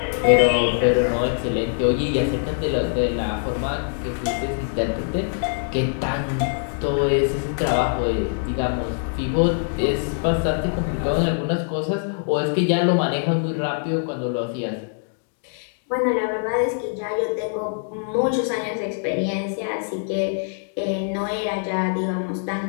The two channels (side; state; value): right; silent; digital silence